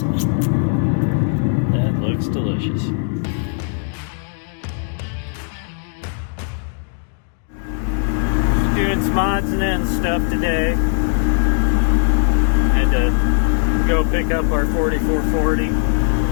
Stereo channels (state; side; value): silent; right; 61 dB below the other